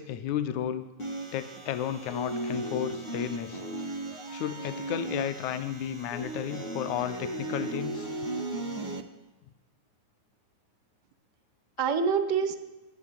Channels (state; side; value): late; right; 9.4 ms